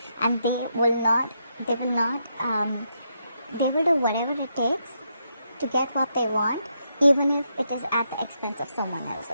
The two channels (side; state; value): both; inverted; correlation -0.80